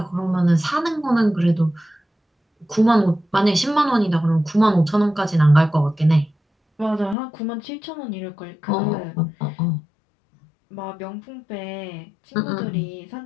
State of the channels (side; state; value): right; drops out; at 7.2 s